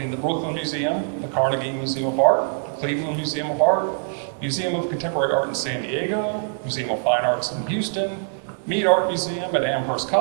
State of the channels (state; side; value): silent; left; digital silence